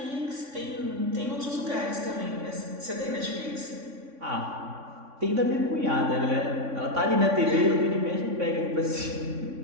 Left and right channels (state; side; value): late; left; 3.6 ms